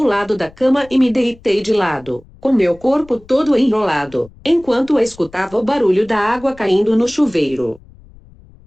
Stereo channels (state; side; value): noise; left; rumble, 24 dB below the sound